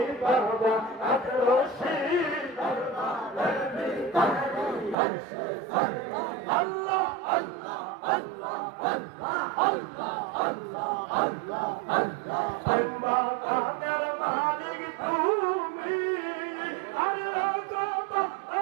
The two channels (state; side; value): drops out; left; at 5.0 s